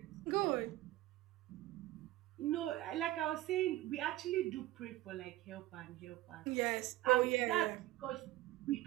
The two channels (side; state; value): left; quieter; 16.2 dB